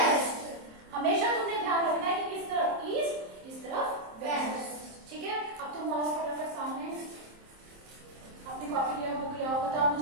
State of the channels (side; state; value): left; late; 27 ms